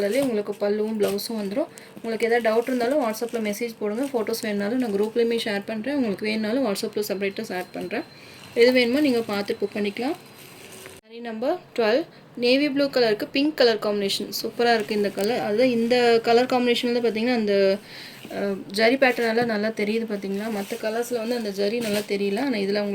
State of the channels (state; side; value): identical; both; correlation 1.00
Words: உங்களுக்கு பல்லுவும் ப்ளவுஸும் வந்துடும். உங்களுக்கு எதாவது டவுட் இருந்தாலும் வாட்ஸ்அப்பில் மெசேஜ் போடுங்க. ஃபோட்டோஸ் வேணுனாலும் நான் குரூப்லேயுமே ஷேர் பண்ணுறேன். உங்களுக்கு வேணுனாலும் வாட்ஸ்அப்பில் செப்பரேட்டாக ஷேர் பண்ணுறேன். எது வேணுமோ நீங்கள் பார்த்து புக் பண்ணிக்கலாம். சாரி நம்பர் 12 நேவி ப்ளூ கலருக்கு பிங்க் கலர் காம்பினேஷன் சூப்பராக இருக்குது இந்த கலர். அதுதான் இந்த கலர் காம்பினேஷனில் பார்த்தீங்கன்னா அந்த ஜரி பேட்டர்னெல்லாம் நல்லா தெரியுது பார்த்தீங்களா. மற்ற கலர்ஸில் வந்து அந்த ஜரி நல்லா தெரியல, ஆனால் இதில்